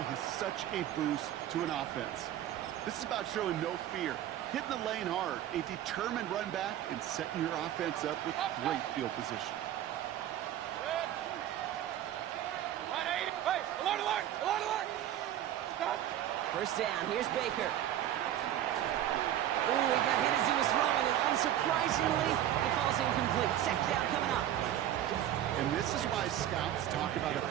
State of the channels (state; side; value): quieter; left; 11.9 dB